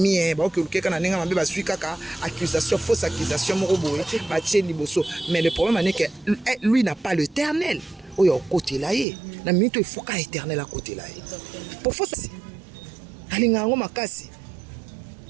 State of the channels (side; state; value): left; drops out; at 9.1 s